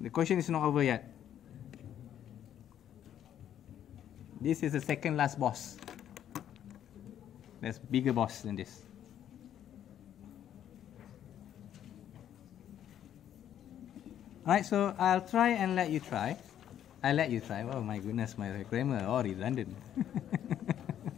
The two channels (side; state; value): right; quieter; 10.4 dB